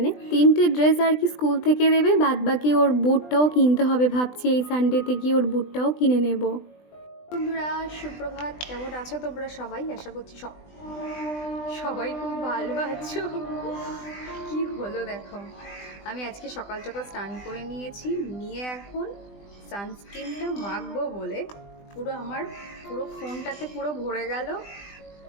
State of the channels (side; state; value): right; late; 20 ms